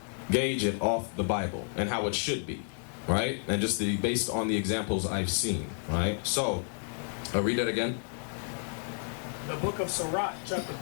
gauge it off the Bible and how it should be, right? And just based on the examples I've seen, right? So, I'll read that again. The book of Sirach, chapter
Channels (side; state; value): right; silent; 57 dB below the other